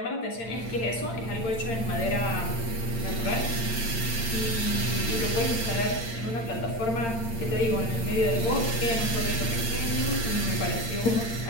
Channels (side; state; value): right; late; 8.7 ms